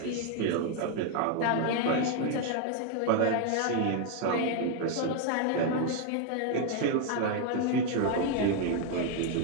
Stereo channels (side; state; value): both; different; correlation 0.01